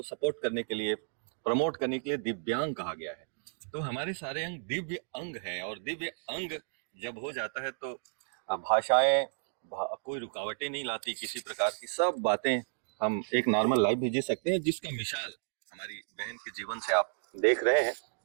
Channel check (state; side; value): silent; left; digital silence